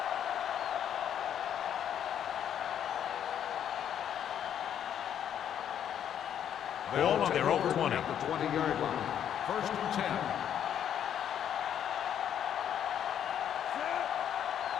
Ball on their own 20. At the 20-yard line. First and 10.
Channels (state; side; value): quieter; right; 9.5 dB